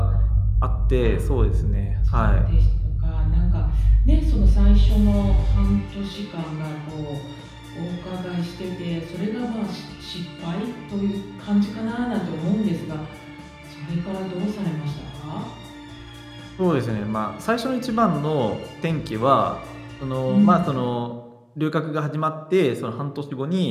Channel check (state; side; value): identical; both; correlation 1.00